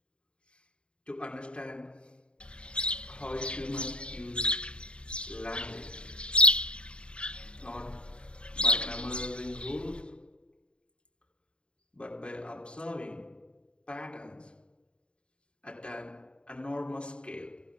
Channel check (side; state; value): right; late; 0.054 ms